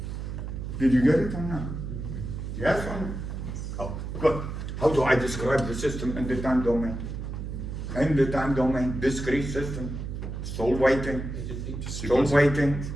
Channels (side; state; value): right; noise; hum, 6 dB below the sound